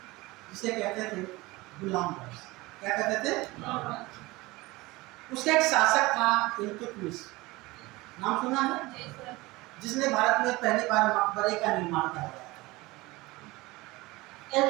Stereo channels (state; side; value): quieter; left; 21.3 dB